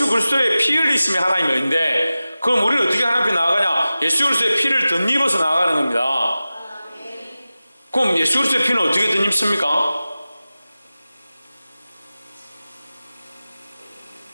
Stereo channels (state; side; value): inverted; both; correlation -0.96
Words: 그리스도의 피 흘리심이 하나님의 의인데, 그럼 우리는 어떻게 하나님 앞에 나아가냐? 예수 그리스도의 피를 덧입어서 나아가는 겁니다. 그럼 예수 그리스도의 피는 어떻게 덧입습니까?